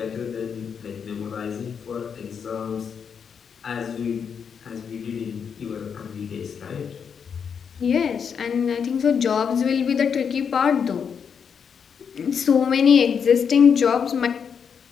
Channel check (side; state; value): right; quieter; 6.9 dB